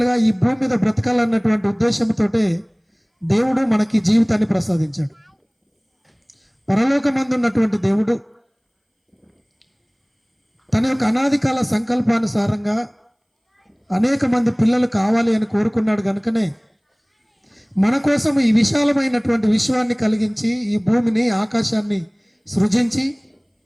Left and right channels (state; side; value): identical; both; correlation 1.00